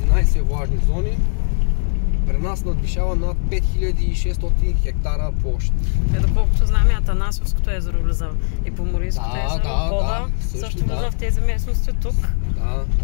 влажни зони. При нас надвишава над 5600 хектара площ. Доколкото знам, и Атанасовското езеро влиза и Поморийското езеро, Бода също влиза в тези местности тук. Да.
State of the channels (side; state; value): right; silent; digital silence